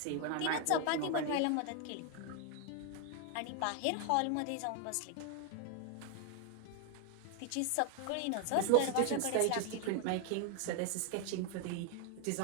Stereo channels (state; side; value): different; both; correlation 0.01